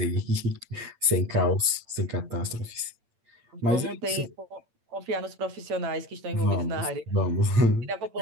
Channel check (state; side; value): late; left; 8.8 ms